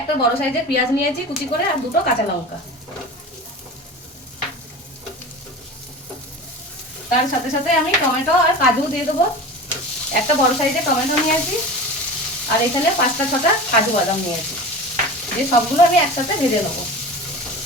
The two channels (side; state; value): both; normal; correlation 0.33